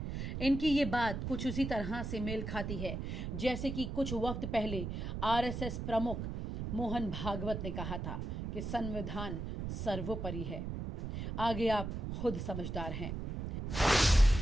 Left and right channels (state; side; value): noise; right; rumble, 5 dB below the sound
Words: इनकी ये बात कुछ उसी तरह से मेल खाती है जैसे कि कुछ वक्त पहले आरएसएस प्रमुख मोहन भागवत ने कहा था कि संविधान सर्वोपरि है। आगे आप खुद समझदार हैं।